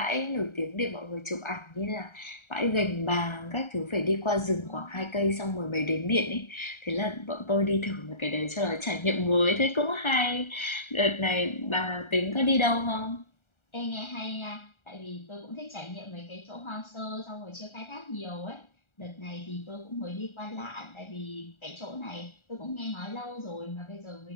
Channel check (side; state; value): right; late; 1.3 ms